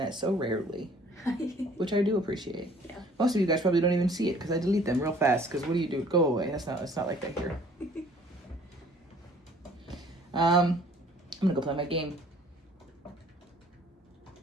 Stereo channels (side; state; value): both; normal; correlation 0.55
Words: so rarely, which I do appreciate. Yeah. Most of you guys probably don't even see it because I delete them real fast. Because what do you do? Go away. It's not like that here. I'm gonna go play my game.